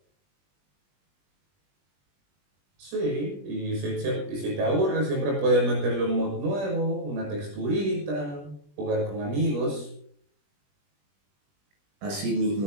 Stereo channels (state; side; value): late; left; 21 ms